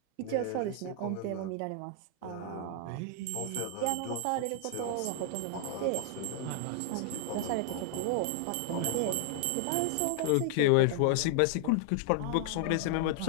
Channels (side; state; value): both; different; correlation 0.00